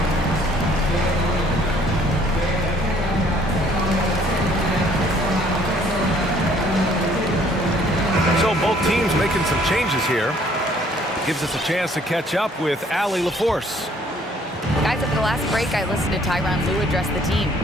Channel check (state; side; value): normal; both; correlation 0.60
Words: So both teams making some changes here. Gives us a chance to catch up with Allie LaForce. Guys, at the last break, I listened to Tyronn Lue address the team.